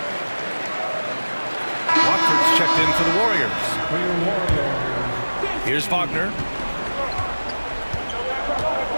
Watford's checked in for the Warriors. Here's Wagner.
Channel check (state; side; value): inverted; both; correlation -1.00